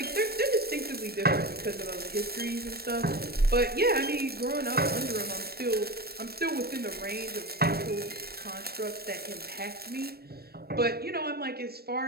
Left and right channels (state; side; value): late; left; 0.46 ms